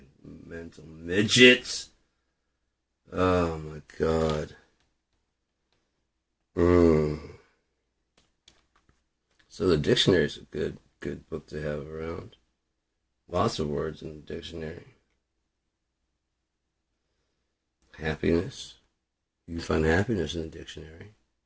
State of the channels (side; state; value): both; identical; correlation 1.00